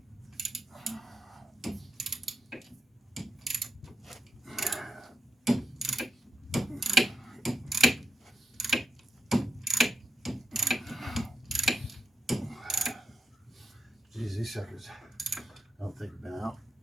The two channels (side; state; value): both; normal; correlation 0.83